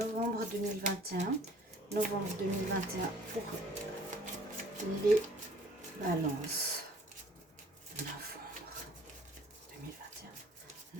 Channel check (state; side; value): normal; both; correlation 0.54